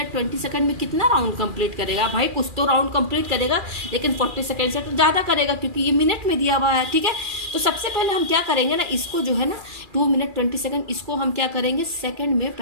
20 सेकंड में कितना राउंड कंप्लीट करेगा भाई, कुछ तो राउंड कंप्लीट करेगा, लेकिन 40 सेकंड से तो ज्यादा करेगा क्योंकि ये मिनट में दिया हुआ है, ठीक है। तो सबसे पहले हम क्या करेंगे ना, इसको जो है ना 2 मिनट 20 सेकंड, इसको हम क्या करेंगे, सेकंड में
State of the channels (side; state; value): left; late; 2.4 ms